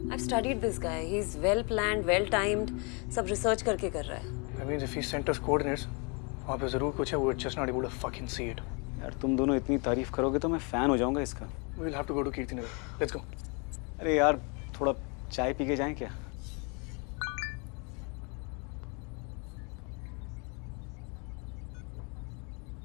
I've studied this guy. He's well planned, well timed. सब रिसर्च करके कर रहा है। That means if he sent us coordinates, वहाँ पे जरूर कुछ है। We're just not able to fucking see it. यार तुम दोनों इतनी तारीफ करोगे तो मैं फैन हो जाऊंगा इसका। We'll have to go to Kirtinagar. Let's go. अरे यार थोड़ा चाय पी के जाएं क्या?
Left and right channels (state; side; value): quieter; right; 33.3 dB